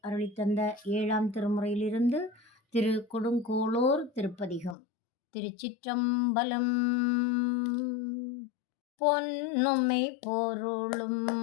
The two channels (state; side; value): drops out; right; at 4.8 s